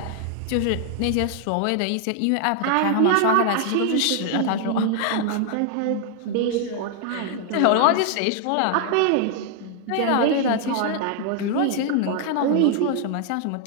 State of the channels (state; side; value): different; both; correlation 0.00